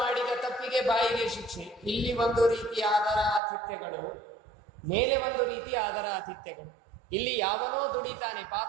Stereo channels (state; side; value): drops out; left; at 3.4 s